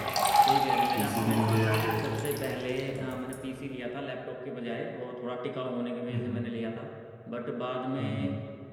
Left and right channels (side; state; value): both; identical; correlation 1.00